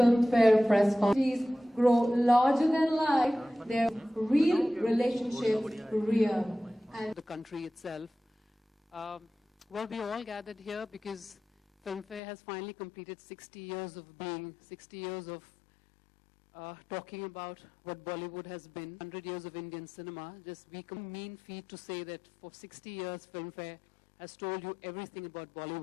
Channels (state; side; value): drops out; right; at 12.2 s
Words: press conference. Please grow larger than life, their real relationships real. And the country itself. Well, we all gathered here because Filmfare has finally completed 60 years of being, 60 years of talking about what Bollywood has been, 100 years of Indian cinema. Just we can mean feat to say that for 60 years, Filmfare has told you everything about